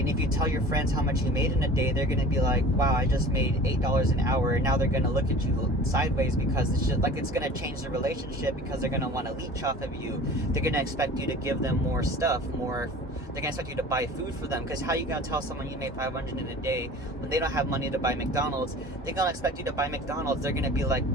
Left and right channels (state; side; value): normal; both; correlation 0.42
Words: if you tell your friends how much you made in a day, they're going to be like, wow, I just made $8 an hour. And now they're going to look at you sideways, because it's just like, it's going to change the relationship, because they're going to want to leech off of you. They're going to expect you to give them more stuff, they're going to expect you to buy food for them, because how you going to tell someone you made $500 in a day when they don't have money to buy McDonald's? They're going to expect you to buy McDonald's. They're going to be like,